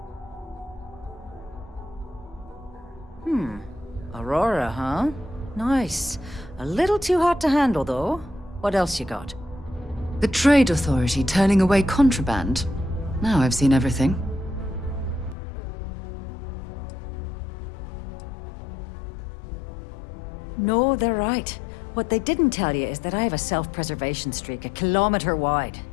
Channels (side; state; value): right; drops out; at 15.4 s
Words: Aurora, huh? Nice. A little too hot to handle, though. What else you got? The Trade Authority turning away contraband. Now I've seen everything. No, they're right. What they didn't tell you is that I have a self-preservation streak a kilometer wide.